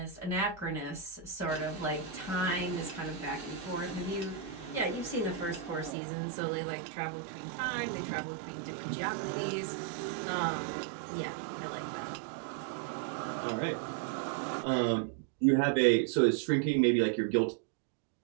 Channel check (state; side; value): drops out; left; at 6.0 s